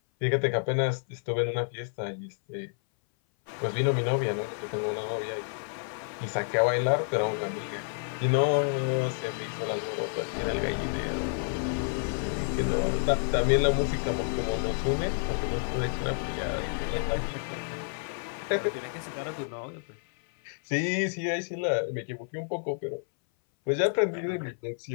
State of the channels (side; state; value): right; silent; 57 dB below the other